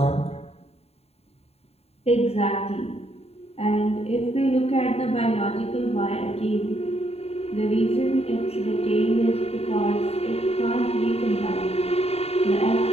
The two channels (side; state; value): right; late; 0.30 ms